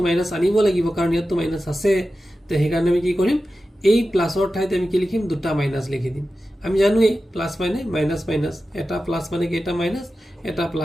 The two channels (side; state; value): both; normal; correlation 0.93